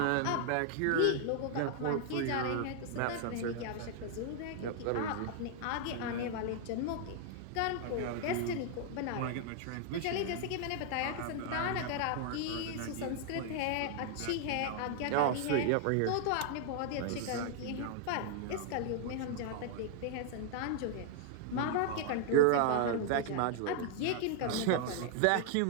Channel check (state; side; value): different; both; correlation 0.00